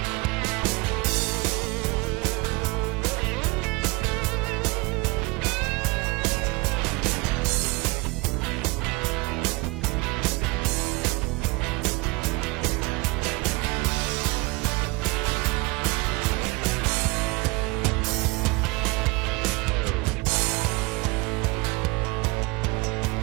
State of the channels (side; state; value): left; quieter; 24.5 dB